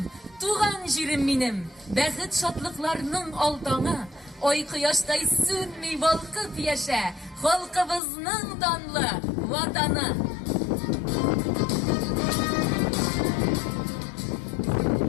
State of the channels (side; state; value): right; drops out; at 8.0 s